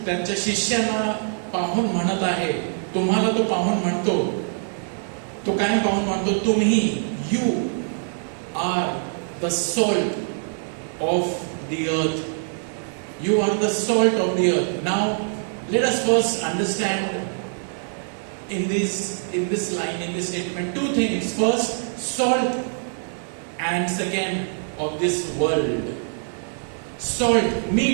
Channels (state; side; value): silent; left; digital silence